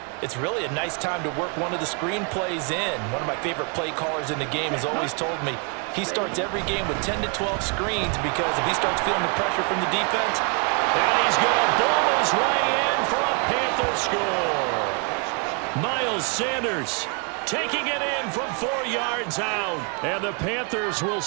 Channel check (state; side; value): quieter; left; 37.1 dB